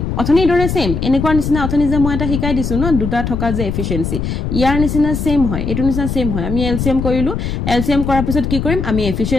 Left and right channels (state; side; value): noise; left; rumble, 3 dB below the sound